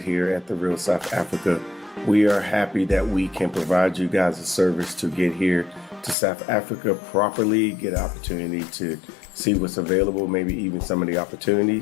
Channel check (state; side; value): drops out; right; at 6.2 s